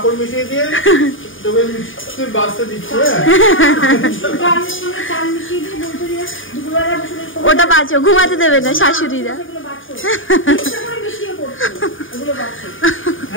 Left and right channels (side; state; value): right; late; 0.57 ms